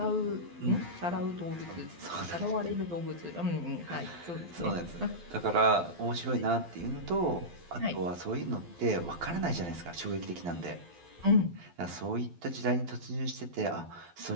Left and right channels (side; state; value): left; late; 12 ms